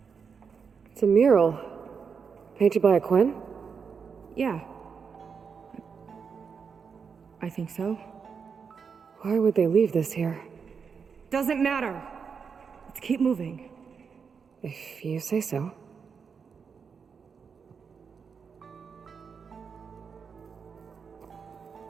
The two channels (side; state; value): left; quieter; 6.0 dB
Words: It's a mural. Painted by a Quen? Yeah. I think so. Why would they leave this here? Doesn't matter. Let's keep moving. If you say so.